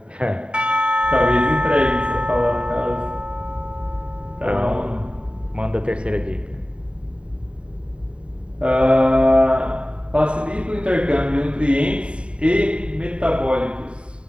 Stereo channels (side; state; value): left; late; 0.056 ms